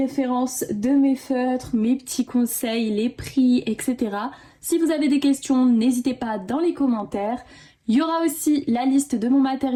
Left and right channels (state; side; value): identical; both; correlation 1.00